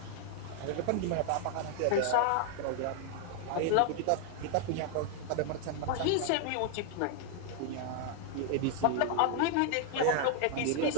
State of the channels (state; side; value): different; both; correlation 0.00